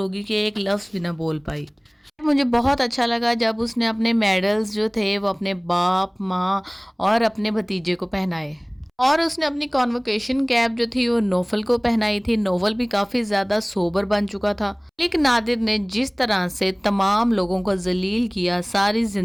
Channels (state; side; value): identical; both; correlation 1.00